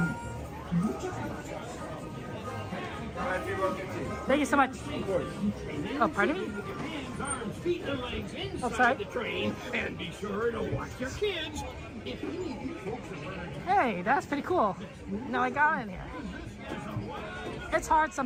Thank you so much. Oh, pardon me? Feet and legs inside outside the train, and be sure to watch your kids. Hey, that's pretty cool. Now I got in here. It's hard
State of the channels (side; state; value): both; identical; correlation 1.00